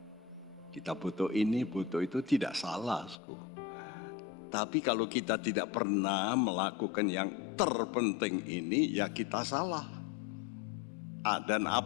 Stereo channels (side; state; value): right; drops out; at 3.2 s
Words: Kita butuh ini, butuh itu, tidak salah. Tapi kalau kita tidak pernah melakukan yang terpenting ini, ya kita salah. Dan